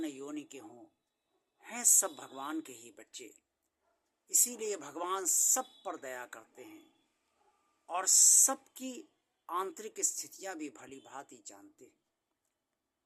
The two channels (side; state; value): both; identical; correlation 1.00